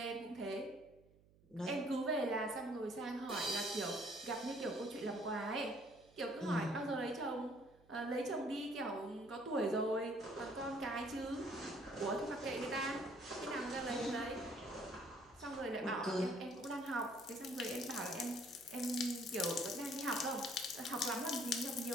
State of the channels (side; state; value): right; noise; hum, 28 dB below the sound